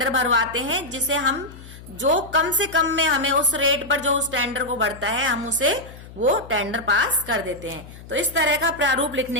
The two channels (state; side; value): noise; left; hum, 17 dB below the sound